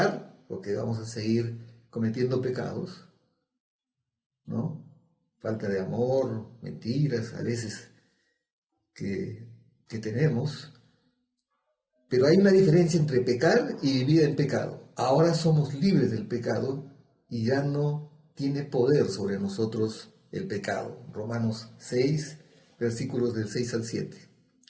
porque vamos a seguir cometiendo pecados, ¿no? Falta de amor, mentiras, a veces que tenemos. Pero hay una diferencia entre pecar y vivir en pecado. Ahora somos libres del pecado y ya no tiene poder sobre nosotros el pecado. Romanos 6, versículos del 6 al 7.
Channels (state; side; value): identical; both; correlation 1.00